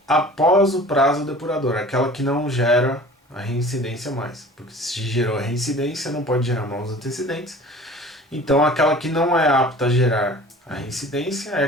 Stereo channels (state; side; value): normal; both; correlation 0.44